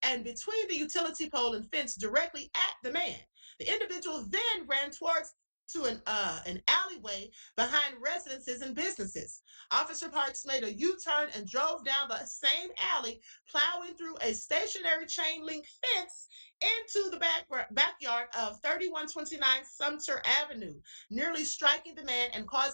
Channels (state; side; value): inverted; both; correlation -1.00